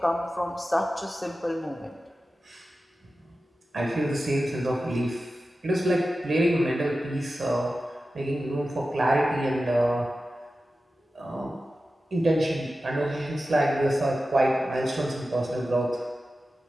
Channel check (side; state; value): both; normal; correlation 0.94